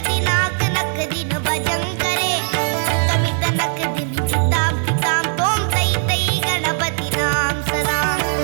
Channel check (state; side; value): silent; left; digital silence